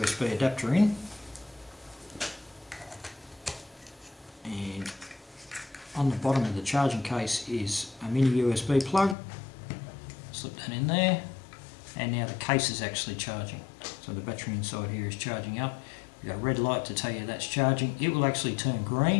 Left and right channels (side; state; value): right; drops out; at 9.2 s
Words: adapter in, and on the bottom of the charging case is a mini USB plug. Slip that in there, and now the case is actually charging. So the battery inside here is charging up. You've got a red light to tell you that's charging. It will actually turn